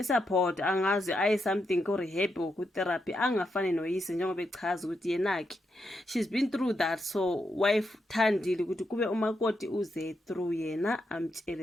angazi aye something ko rehab or ku therapy angafani noyise njengoba echaza ukuthi yenaki she's been through that, so wife thandile ukuthi kube umakoti uze through yena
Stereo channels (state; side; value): normal; both; correlation 0.83